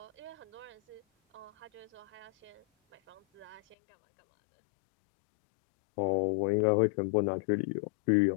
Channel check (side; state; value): right; drops out; at 3.8 s